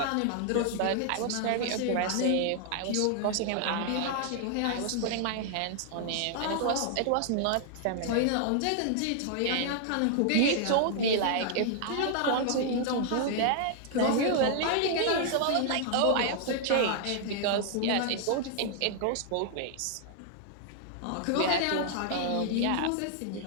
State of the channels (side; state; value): both; different; correlation 0.00